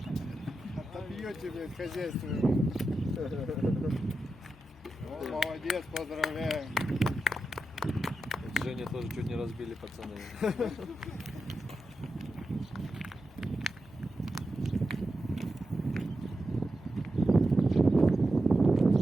Отобьете, блядь, хозяйство. О, молодец, поздравляю. Женя тоже чуть не разбили, пацаны.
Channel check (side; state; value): left; noise; hum, 26 dB below the sound